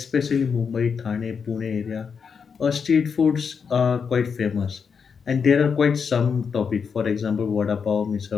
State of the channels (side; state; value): right; quieter; 6.2 dB